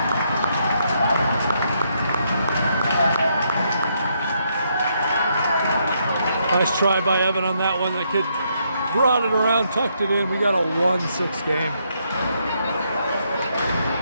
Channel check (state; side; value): inverted; both; correlation -0.76